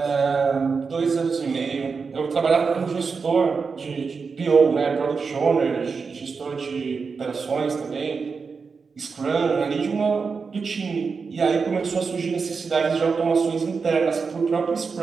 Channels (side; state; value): left; quieter; 5.1 dB